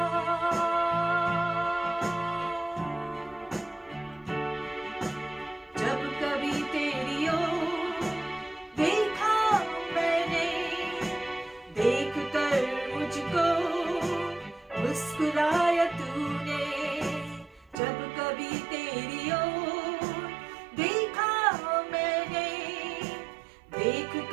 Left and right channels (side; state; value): left; drops out; at 17.8 s